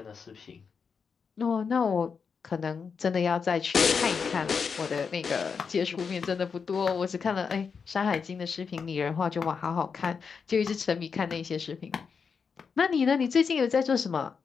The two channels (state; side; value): quieter; right; 5.8 dB